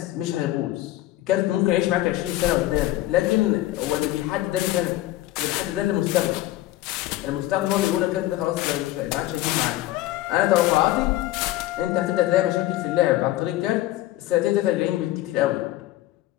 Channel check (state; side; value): quieter; right; 15.9 dB